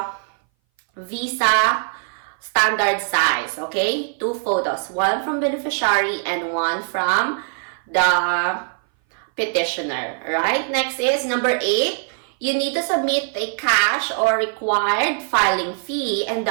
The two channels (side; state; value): left; silent; 59 dB below the other